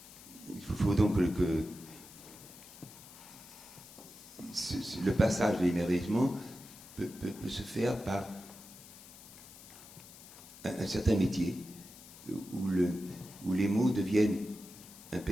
il faut donc que le passage de l'émerveillement peut se faire par un certain métier où les mots deviennent un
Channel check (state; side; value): noise; left; hiss, 18 dB below the sound